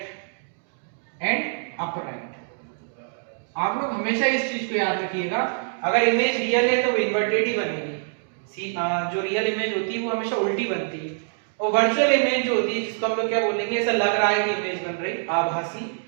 एंड अपराइट। आप लोग हमेशा इस चीज को याद रखिएगा, अगर इमेज रियल है तो वो इन्वर्टेड ही बनेगी। जो रियल इमेज होती है वो हमेशा उल्टी बनती है। और वर्चुअल इमेज जो होती है, जिसको हम लोग क्या बोलेंगे, ऐसा लग रहा है कि इमेज बन रही, आभासी,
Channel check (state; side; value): silent; left; digital silence